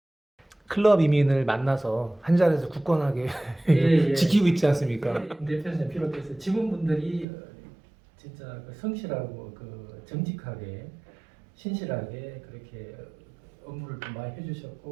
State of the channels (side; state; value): left; drops out; at 7.2 s